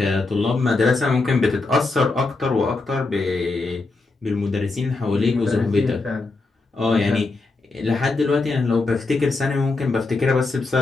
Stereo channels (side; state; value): right; quieter; 3.6 dB